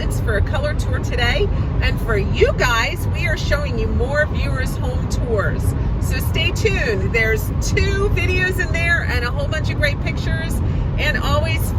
for a color tour today. And for you guys, we are showing you more viewers' home tours. So stay tuned. There's 2 videos in there and a whole bunch of great pictures, and always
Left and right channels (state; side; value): identical; both; correlation 1.00